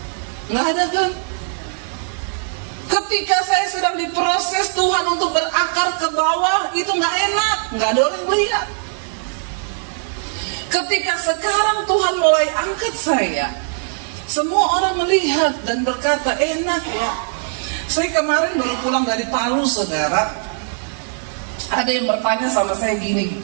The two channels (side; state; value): left; silent; 66 dB below the other